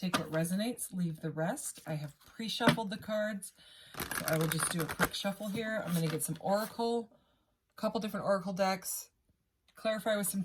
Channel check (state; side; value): identical; both; correlation 1.00